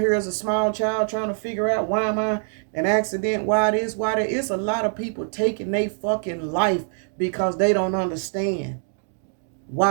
here as a small child trying to figure out, why am I an accident? Why this? Why that? It's a lot of people taking their fucking life because they don't understand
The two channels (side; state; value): left; silent; 63 dB below the other